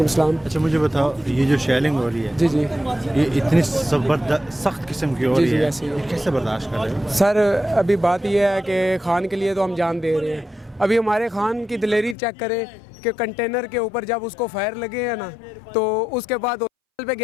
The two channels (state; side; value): drops out; right; at 12.2 s